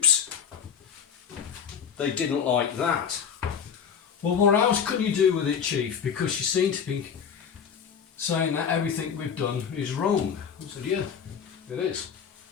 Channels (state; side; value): quieter; right; 7.3 dB